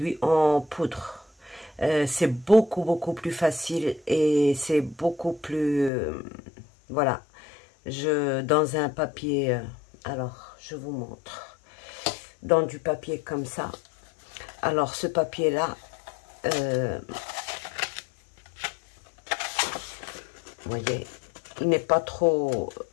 en poudre. C'est beaucoup plus facile et c'est beaucoup plus... voilà. Dans un papier... alors, je vous montre. Dans du papier comme ça. Alors, ce papier-là... vous voyez, il n'est pas trop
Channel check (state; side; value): drops out; right; at 5.9 s